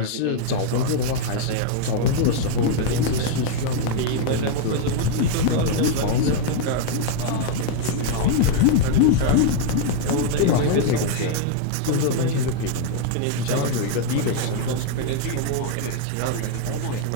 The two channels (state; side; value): different; both; correlation 0.00